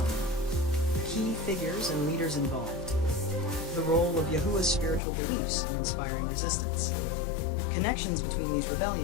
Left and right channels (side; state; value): right; drops out; at 5.0 s